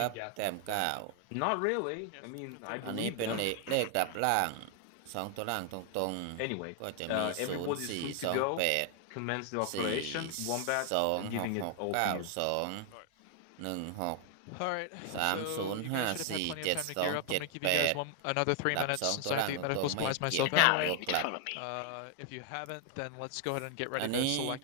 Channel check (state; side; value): different; both; correlation 0.00